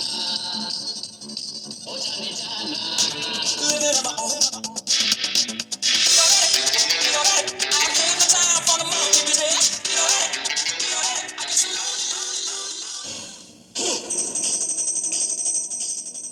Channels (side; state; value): both; identical; correlation 1.00